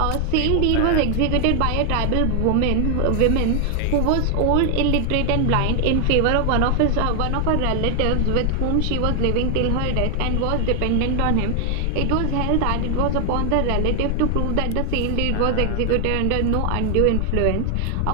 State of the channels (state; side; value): different; both; correlation 0.00